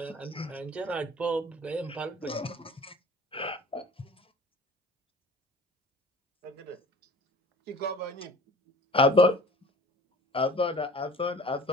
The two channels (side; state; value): both; normal; correlation 0.44